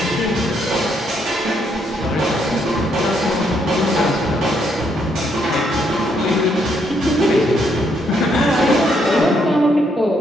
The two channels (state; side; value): normal; both; correlation 0.74